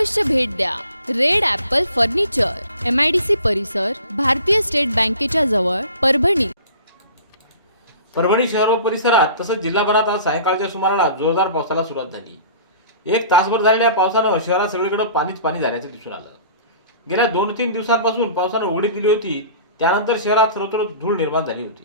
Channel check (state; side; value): inverted; both; correlation -0.45